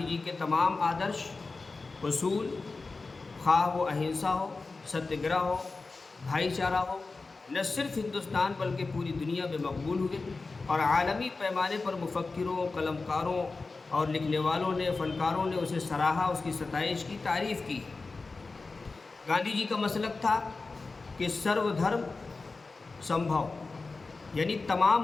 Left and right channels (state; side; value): quieter; right; 3.8 dB